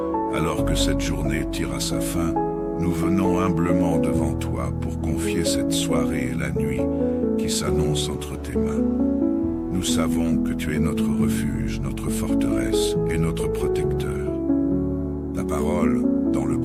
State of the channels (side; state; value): both; identical; correlation 1.00